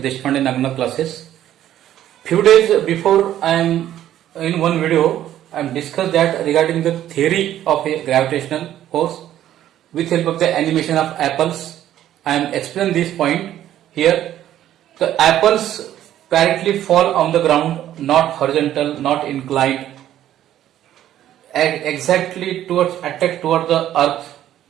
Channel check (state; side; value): quieter; left; 12.0 dB